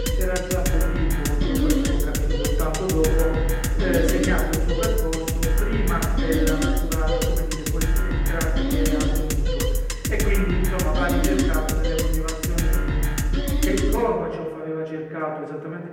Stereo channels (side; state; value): both; identical; correlation 1.00